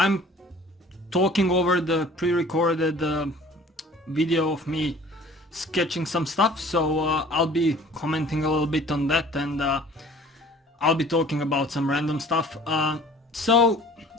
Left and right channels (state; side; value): normal; both; correlation 0.49